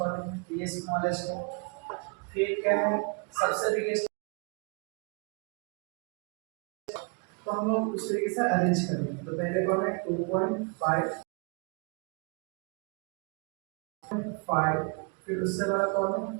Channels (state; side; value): quieter; left; 34.7 dB